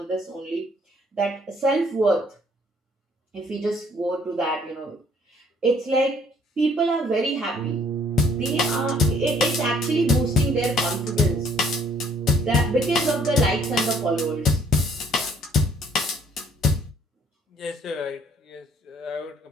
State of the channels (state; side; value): normal; both; correlation 0.62